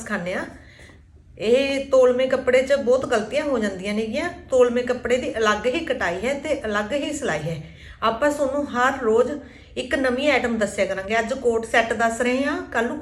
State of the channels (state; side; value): identical; both; correlation 1.00